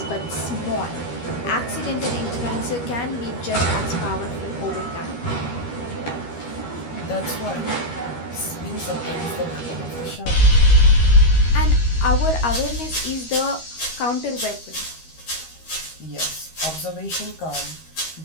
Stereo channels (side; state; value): right; late; 13 ms